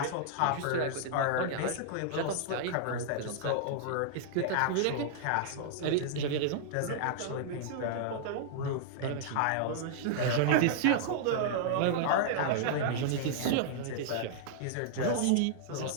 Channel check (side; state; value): both; different; correlation -0.01